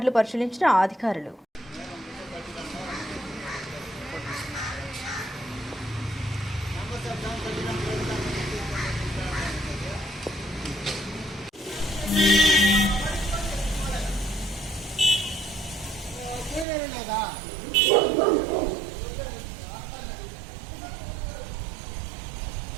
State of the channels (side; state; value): left; drops out; at 16.7 s